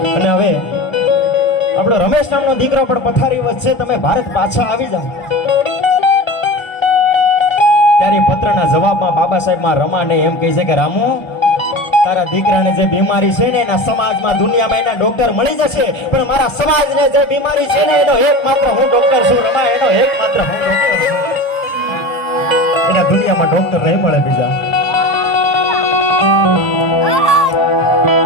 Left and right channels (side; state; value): right; late; 1.4 ms